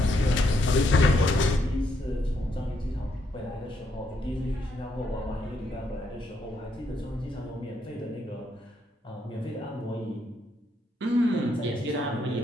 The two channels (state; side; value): normal; both; correlation 0.76